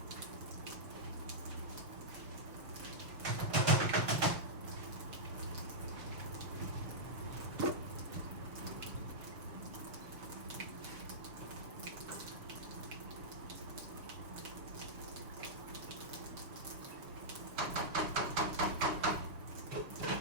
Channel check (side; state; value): left; late; 6.4 ms